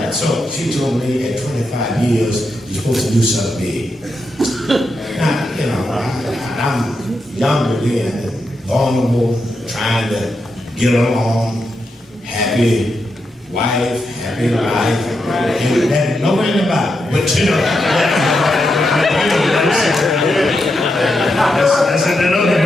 And so she told me at 25 years, you're supposed to do something big. Now, I'm younger then and vulnerable, trying to get along. Happy wife, happy life, and that nowhere in the Bible, but that's in another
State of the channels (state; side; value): normal; both; correlation 0.84